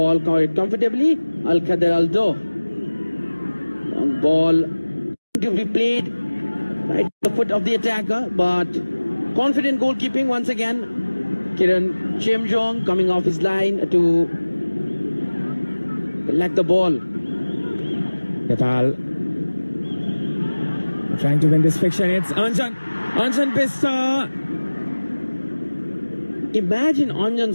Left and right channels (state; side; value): inverted; both; correlation -1.00